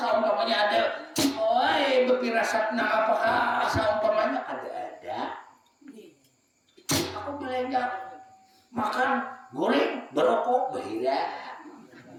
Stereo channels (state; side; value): identical; both; correlation 1.00